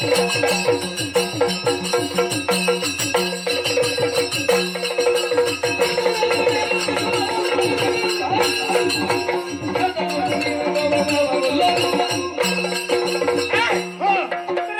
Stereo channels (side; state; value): both; identical; correlation 1.00